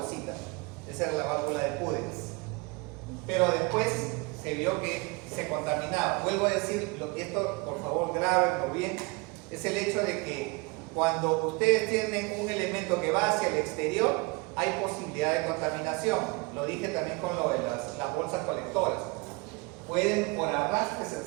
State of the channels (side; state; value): left; quieter; 27.2 dB